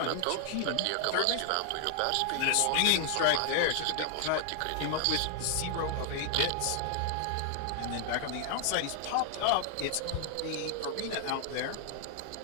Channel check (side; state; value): both; different; correlation 0.00